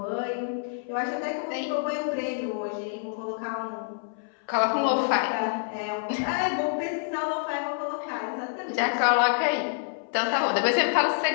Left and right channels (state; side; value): silent; right; 60 dB below the other